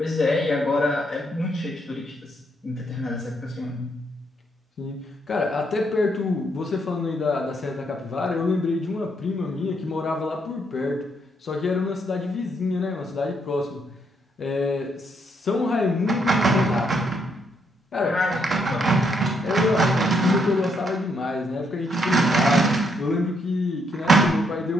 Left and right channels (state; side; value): normal; both; correlation 0.74